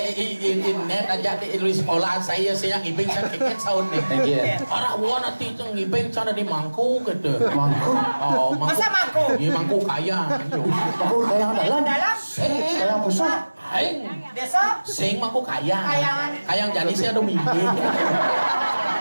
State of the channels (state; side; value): inverted; both; correlation -1.00